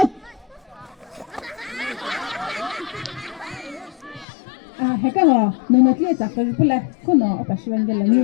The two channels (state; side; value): drops out; right; at 4.2 s